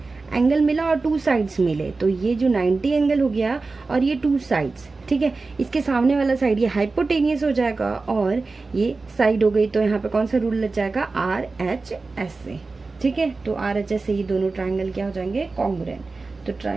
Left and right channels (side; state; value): left; quieter; 3.8 dB